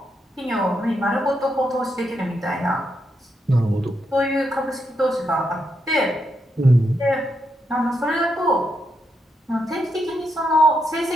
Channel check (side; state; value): both; normal; correlation 0.81